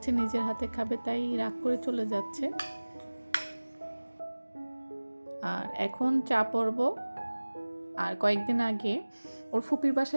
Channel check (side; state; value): both; inverted; correlation -1.00